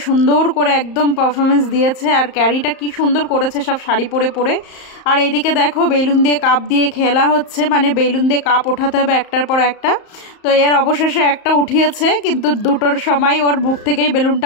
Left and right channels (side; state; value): right; late; 34 ms